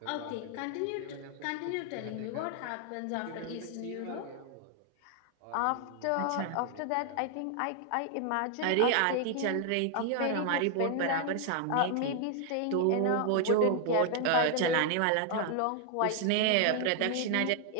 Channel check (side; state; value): both; different; correlation 0.00